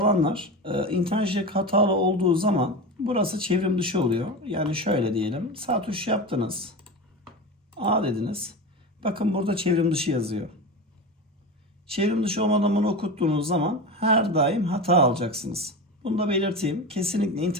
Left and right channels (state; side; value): normal; both; correlation 0.25